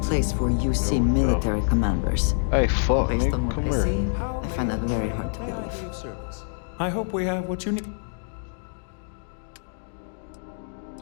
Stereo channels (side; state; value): right; silent; digital silence